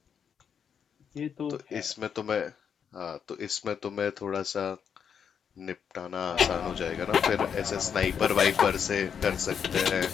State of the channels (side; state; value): right; quieter; 7.4 dB